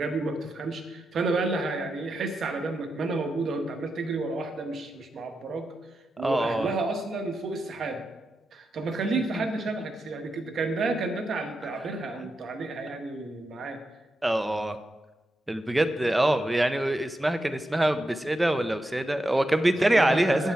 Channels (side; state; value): both; normal; correlation 0.87